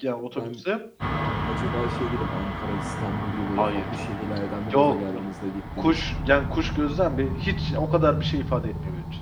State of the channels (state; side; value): identical; both; correlation 1.00